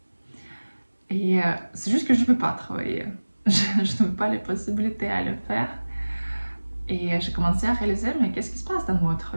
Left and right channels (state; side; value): inverted; both; correlation -1.00